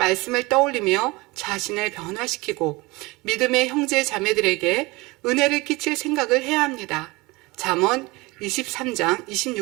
떠올리며 자신을 변화시키고 믿음의 형제 자매들에게 은혜를 끼칠 생각을 해야 합니다. 잠언 23장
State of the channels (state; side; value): quieter; left; 23.4 dB